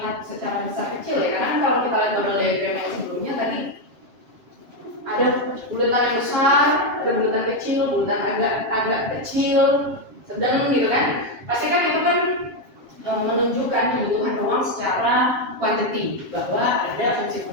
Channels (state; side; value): late; left; 7.4 ms